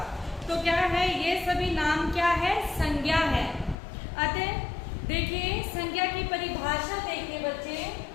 तो क्या है? ये सभी नाम क्या है? संज्ञा है. अतः देखिए, संज्ञा की परिभाषा देखिए बच्चे.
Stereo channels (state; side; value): drops out; right; at 3.8 s